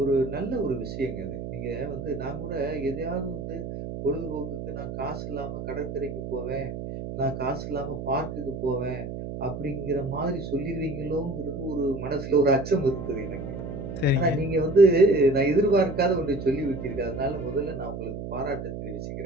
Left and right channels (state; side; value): noise; right; hum, 7 dB below the sound